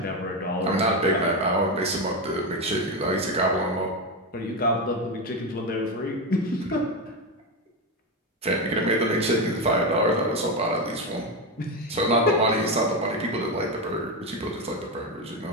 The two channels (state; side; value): normal; both; correlation 0.12